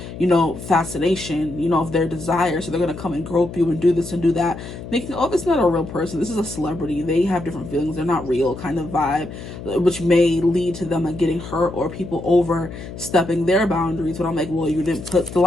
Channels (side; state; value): left; noise; hum, 11 dB below the sound